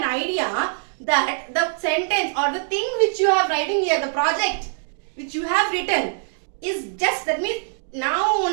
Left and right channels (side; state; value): left; silent; digital silence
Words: idea that the sentence or the thing which you have writing here, the project which you have written is just, that means now